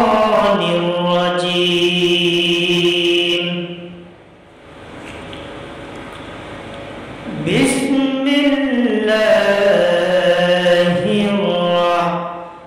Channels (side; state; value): both; identical; correlation 1.00